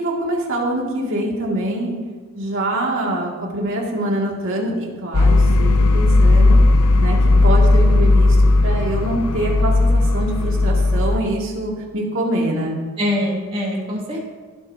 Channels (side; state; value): both; normal; correlation 0.83